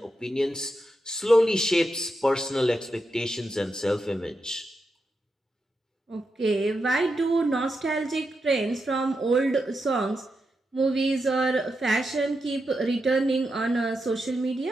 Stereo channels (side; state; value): both; normal; correlation 0.86